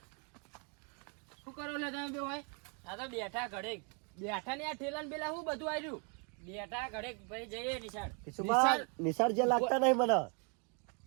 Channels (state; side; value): quieter; left; 36.5 dB